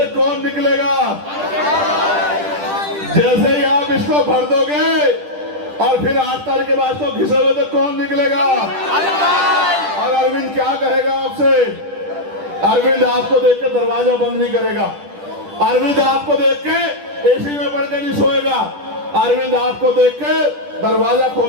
कौन निकलेगा? जैसे ही आप इसको भर दोगे और फिर 8 तारीख के बाद तो घिसे हुए तो कौन निकलेगा? और अरविंद क्या कहेगा आपसे? अरविंद आपको देख के दरवाजा बंद नहीं करेगा। अरविंद आपको देख के एसी में पड़ के नहीं सोएगा। अरविंद आपको देख के दरवाजा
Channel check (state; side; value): late; left; 10 ms